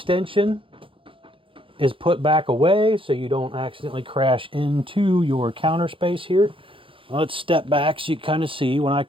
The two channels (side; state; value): left; late; 0.25 ms